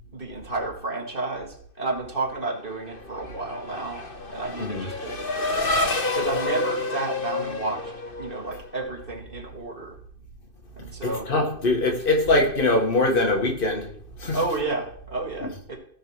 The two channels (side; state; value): right; late; 2.6 ms